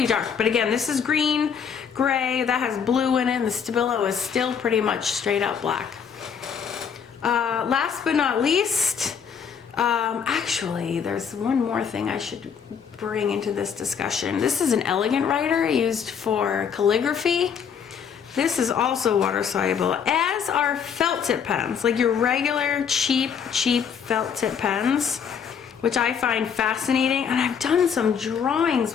dark, but again, this is green, gray, that has blue in it, and the Stabilo is still pretty much straight up black. Last but not least, actually, there's one more thing I should bring into this discussion. This is an elegant writer used for calligraphy. This is also water-soluble, as are felt tip pens, like your regular cheap felt tip pens, which I find fascinating. And I've done some drawings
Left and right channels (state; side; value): quieter; right; 7.2 dB